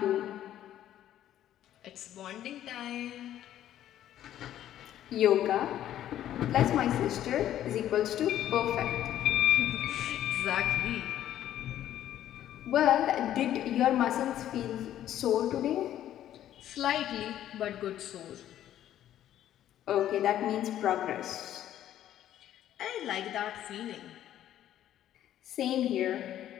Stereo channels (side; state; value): right; quieter; 11.9 dB